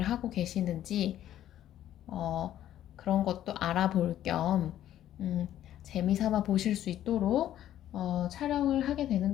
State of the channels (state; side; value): quieter; right; 12.0 dB